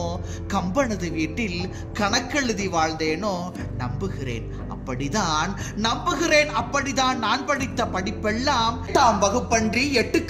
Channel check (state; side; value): identical; both; correlation 1.00